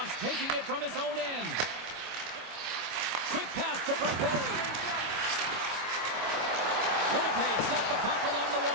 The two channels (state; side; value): late; left; 25 ms